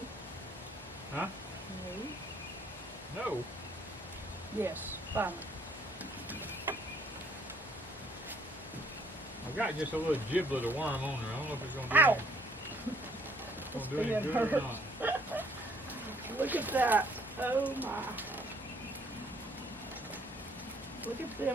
No. Huh? No. No. Yes, finally. I've got just a little giblet of worm on there. I don't know if it's going to do Ow! Gonna do any being good or hurt. not. Look at that. Oh my. Look at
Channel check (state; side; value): normal; both; correlation 0.63